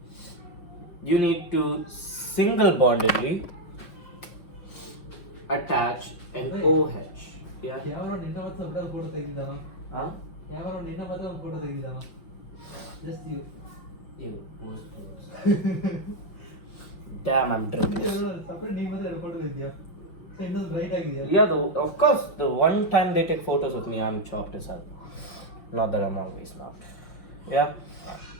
you need to single bondedly attach an OH. Yeah? Huh? Just you. Ew, damn, I'm drinking. Yeah, of course, the one time they take photos of me, I'm chopped as hell. Not that I'm always not. Yeah?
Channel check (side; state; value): right; late; 5.7 ms